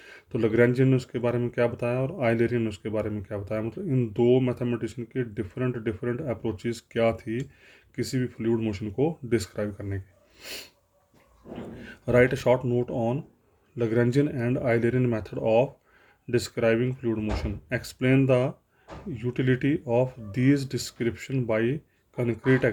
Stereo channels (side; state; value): both; identical; correlation 1.00